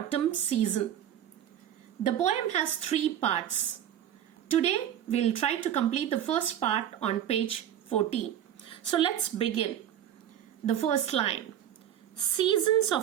season. The poem has 3 parts. Today, we'll try to complete the first part on page 14. So let's begin. The first line. Seasons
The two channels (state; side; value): quieter; left; 10.6 dB